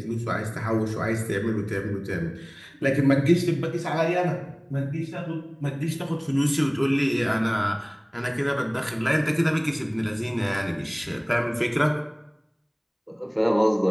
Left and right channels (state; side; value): identical; both; correlation 1.00